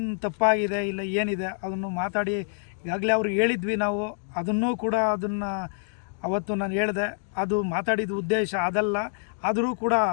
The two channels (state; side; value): silent; right; digital silence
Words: ತಪ್ಪಾಗಿದೆ ಇಲ್ಲ ಏನಿದೆ ಅದನ್ನು ಮಾತಾಡಿ ಈಗಾಗಲೇ ಅವ್ರಿಗೆ ಹೇಳಿದ್ವಿ ನಾವು, ಅದನ್ನೂ ಕೂಡ ಅದನ್ನು ಅವತ್ತು ನಾನು ಹೇಳಿದೆ, ಅದು ಮಾತಾಡಿದ ಉದ್ದೇಶ ಅದಲ್ಲ. ಆದರೂ ಕೂಡ